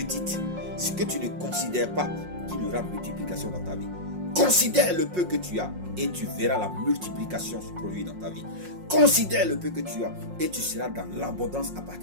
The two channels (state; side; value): late; left; 5.5 ms